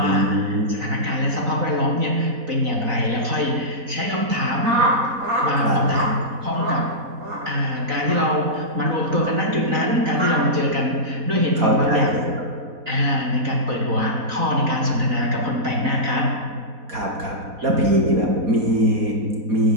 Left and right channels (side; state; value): left; late; 4.1 ms